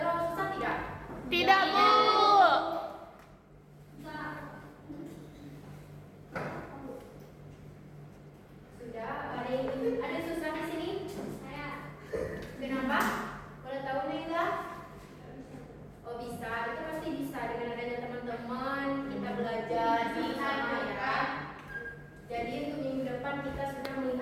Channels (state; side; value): identical; both; correlation 1.00